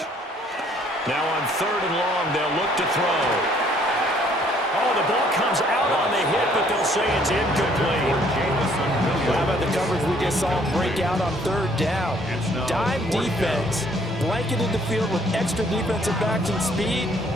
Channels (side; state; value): both; normal; correlation 0.62